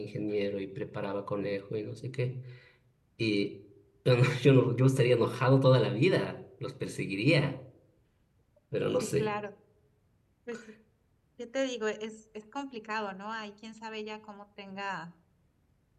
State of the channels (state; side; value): identical; both; correlation 1.00